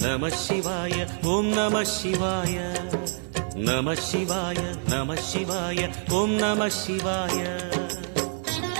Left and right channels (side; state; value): left; silent; digital silence